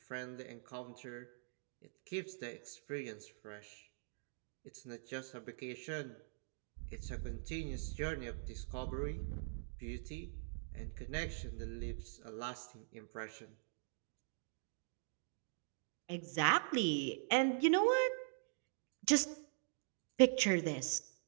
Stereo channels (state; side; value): silent; left; digital silence